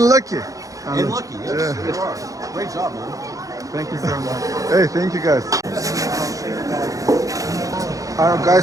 lucky. And lucky, yes, you are. Great job, man. Thank you so much. Hey, thank you guys. Are you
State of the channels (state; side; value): late; left; 0.16 ms